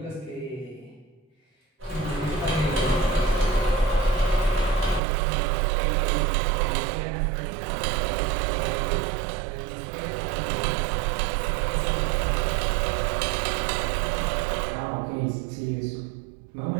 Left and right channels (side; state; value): left; drops out; at 5.0 s